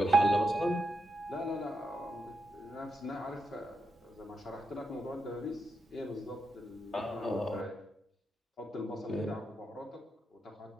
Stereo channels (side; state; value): both; normal; correlation 0.85